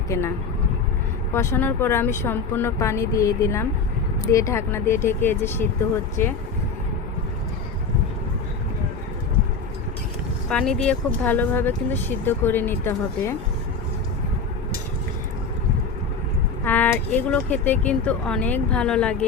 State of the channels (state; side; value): quieter; right; 4.8 dB